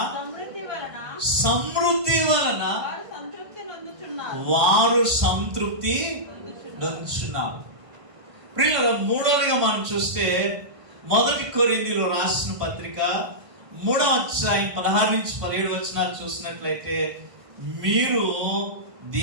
సమృద్ధి వలన వారు సంతృప్తి నొందుచున్నారు. ప్రియులారా, మూడవదిగా మనం చూస్తే 1 కొరింథీయులు రాసిన పత్రిక 3వ అధ్యాయం 16 నుంచి 17 వచనాలు చూసినట్లయితే, మీరు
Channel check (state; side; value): late; left; 1.5 ms